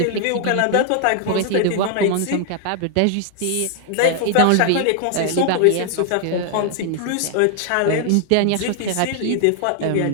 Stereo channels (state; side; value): different; both; correlation 0.00